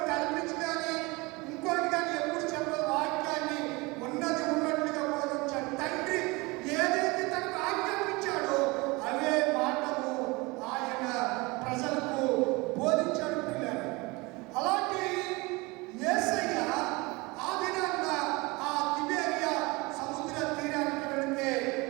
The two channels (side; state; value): left; quieter; 24.7 dB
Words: కల్పించి కానీ ఇంకోటి కానీ ఎప్పుడు చెప్పదు. వాక్యాన్ని ఉన్నది ఉన్నట్లుగా బోధించాడు. తండ్రి ఏదైతే తనకు ఆజ్ఞాపించాడో అవే మాటలు ఆయన ప్రజలకు బోధించాడు. పిల్లలు అలాంటి యేసయ్య ఆ దినాన్న ఆ తిబేరియా సముద్ర తీరానికి వెళితే